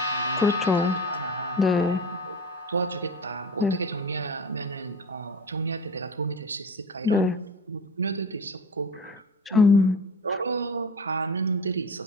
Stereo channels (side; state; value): both; normal; correlation 0.33